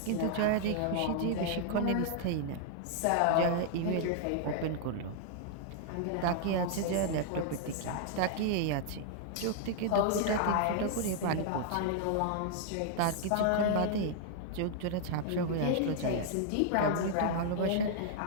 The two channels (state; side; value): different; both; correlation 0.00